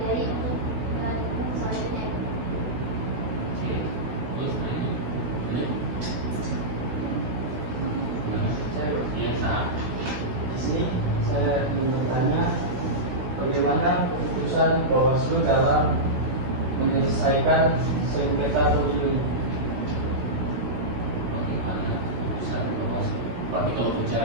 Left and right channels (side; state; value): left; late; 16 ms